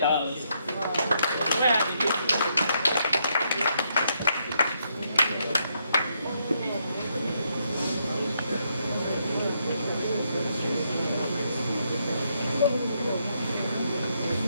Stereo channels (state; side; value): inverted; both; correlation -0.77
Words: Where are the people?